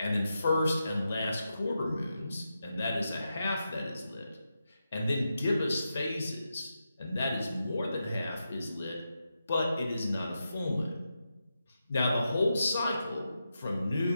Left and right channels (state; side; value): inverted; both; correlation -0.88